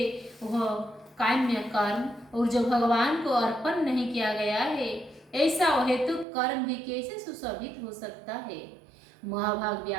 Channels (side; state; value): left; drops out; at 6.2 s